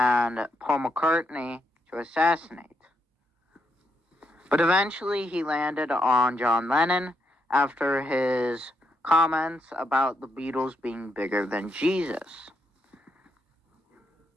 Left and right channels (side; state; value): both; normal; correlation 0.79